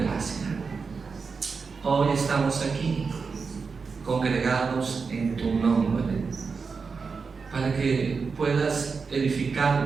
Hoy estamos aquí, congregados en tu nombre, para que puedas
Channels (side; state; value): left; quieter; 5.0 dB